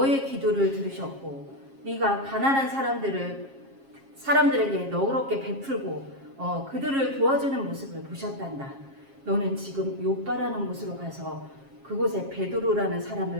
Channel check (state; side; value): late; left; 7.4 ms